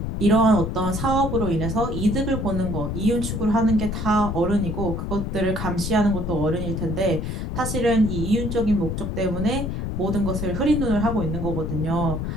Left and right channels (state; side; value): noise; left; rumble, 3 dB below the sound